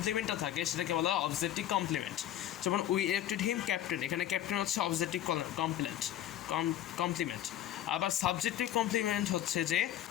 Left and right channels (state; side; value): quieter; right; 12.0 dB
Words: থাকে সেটাকে বলা হয় অবজেক্টিভ কমপ্লিমেন্ট। যেমন উই ইলেক্টেড হিম ক্যাপ্টেন, এখানে ক্যাপ্টেন হচ্ছে অবজেক্টিভ কমপ্লিমেন্ট। আবার সাবজেক্টিভ কমপ্লিমেন্ট হচ্ছে যে